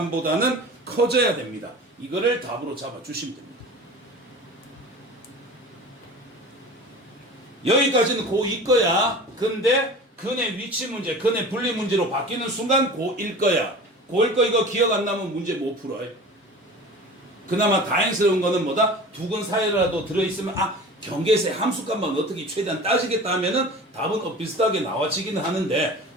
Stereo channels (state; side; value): normal; both; correlation 0.38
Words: 커져야 됩니다. 이거를 답으로 잡아주시면 됩니다. 여기까지는 고2 거야. 근데 근의 위치 문제, 근의 분리 문제로 바뀌는 순간 고1 거야. 고1 거 이거 기억 안 나면 문제 못 풀어요. 그나마 다행스러운 거는 뭐다? 두 근 사이라도 들어있으면 경계세 함수값만 어떻게 최대한 따지겠다 하면은 답은 비슷하게 나와지기는 하는데